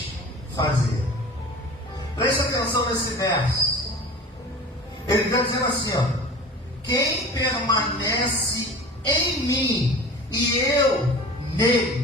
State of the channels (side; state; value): both; normal; correlation 0.38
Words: fazer. Preste atenção nesse verso. Ele está dizendo assim, ó. Quem permanece em mim e eu